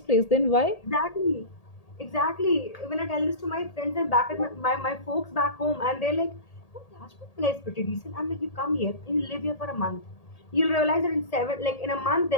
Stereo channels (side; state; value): right; late; 1.8 ms